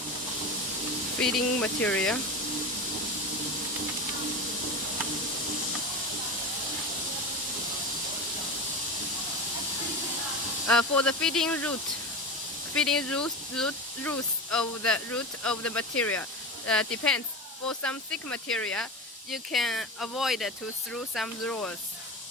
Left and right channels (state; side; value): normal; both; correlation 0.25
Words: Feeding material. For the feeding roots of the material depends. For some thick material, you can avoid to through some rolls.